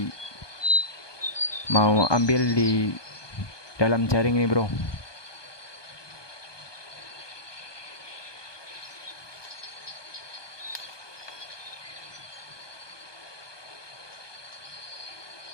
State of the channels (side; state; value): right; late; 1.2 ms